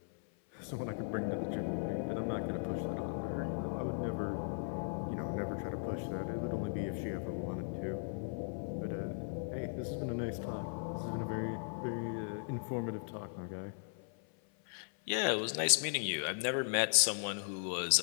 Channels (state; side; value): silent; right; 53 dB below the other